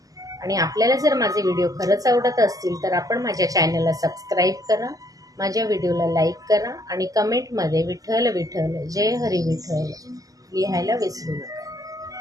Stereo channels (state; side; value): late; left; 0.17 ms